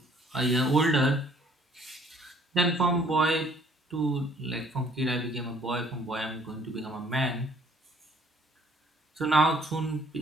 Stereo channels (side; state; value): both; normal; correlation 0.60